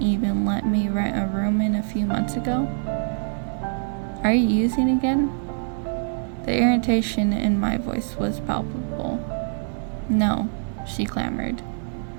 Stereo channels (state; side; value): silent; left; digital silence